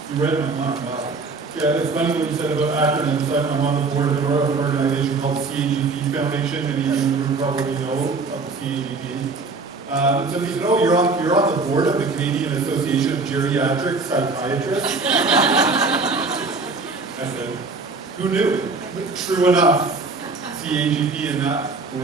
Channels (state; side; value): quieter; left; 3.9 dB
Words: You read my mind, wow. Yeah, it's funny what you said about acronyms. I'm on the board of an organization called CAGP Foundation, and even you probably know of the CAGP. Somebody said, oh, you're on the board of the Canadian Association of Geriatric Psychiatrists? I said, who knew? True enough, CAGP in that